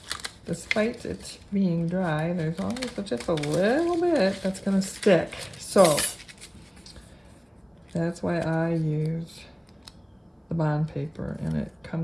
despite it being dry, there's always just a little bit that's going to stick. So that's why I use the bond paper, and it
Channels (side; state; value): both; identical; correlation 1.00